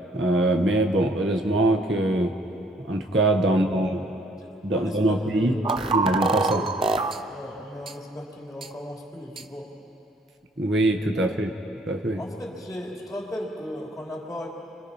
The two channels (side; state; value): both; normal; correlation 0.62